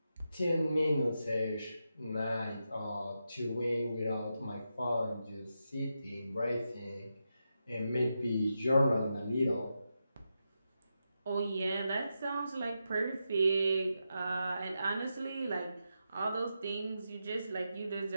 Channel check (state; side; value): inverted; both; correlation -0.87